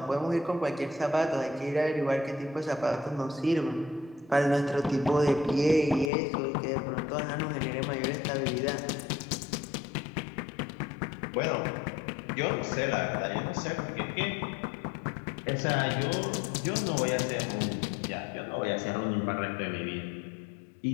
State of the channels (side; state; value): right; drops out; at 6.1 s